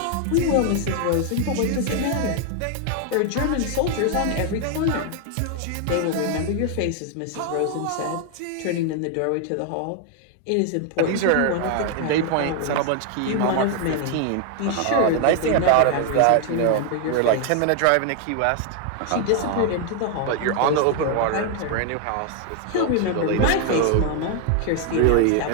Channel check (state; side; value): different; both; correlation 0.01